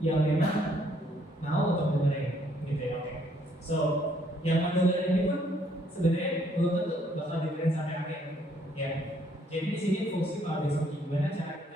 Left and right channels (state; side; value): normal; both; correlation 0.67